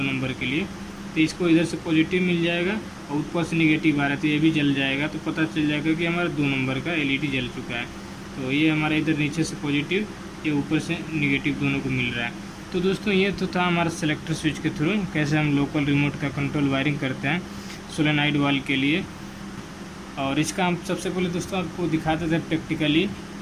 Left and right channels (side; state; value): both; identical; correlation 1.00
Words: नंबर के लिए, तो इसको इधर से पॉजिटिव मिल जाएगा और ऊपर से निगेटिव आ रहा है, तो ये भी जल जाएगा। तो पता चल जाएगा कि हमारा 2 नंबर का LED जल चुका है। तो ये हमारा इधर नीचे से पॉजिटिव, ये ऊपर से निगेटिव दोनों को मिल रहा है। तो दोस्तों ये तो था हमारा सेलेक्टर स्विच के थ्रू कैसे हम लोकल रिमोट का कंट्रोल वायरिंग करते हैं सोलेनॉइड वाल्व के लिए। और इसका हम सबसे पहले दोस्तों आपको दिखाते थे प्रैक्टिकली